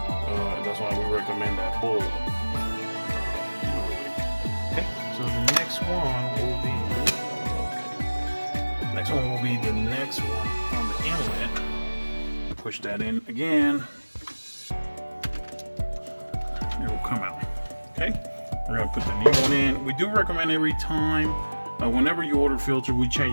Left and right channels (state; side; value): inverted; both; correlation -1.00